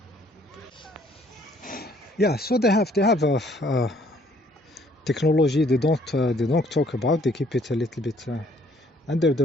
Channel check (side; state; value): both; normal; correlation 0.62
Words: Yeah, so they have a technology they don't talk about. They keep it a little bit under